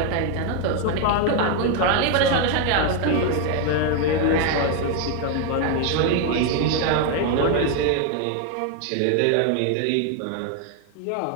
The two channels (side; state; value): both; different; correlation 0.01